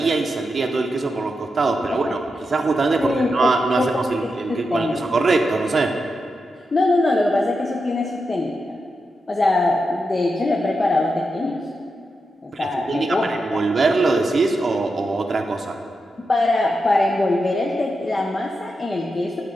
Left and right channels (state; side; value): normal; both; correlation 0.87